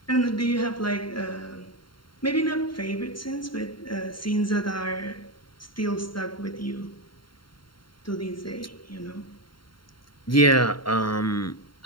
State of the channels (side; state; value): right; late; 0.73 ms